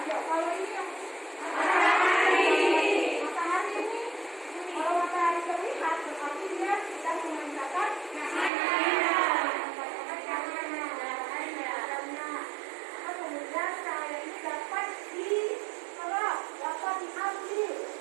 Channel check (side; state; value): left; drops out; at 8.5 s